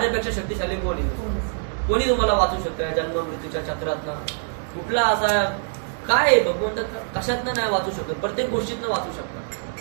शक्तिशाली कोणी? कोणी तुम्हाला वाचू शकतं जन्म मृत्यूच्या चक्रातनं? कुठला असा काय भगवंत कशातनं नाही वाचू शकत? प्रत्येक गोष्टीतनं वाचू शकतात.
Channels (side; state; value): left; silent; digital silence